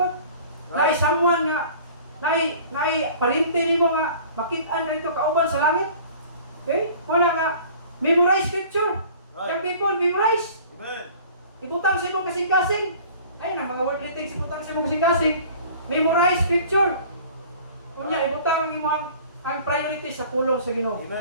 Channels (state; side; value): inverted; both; correlation -0.47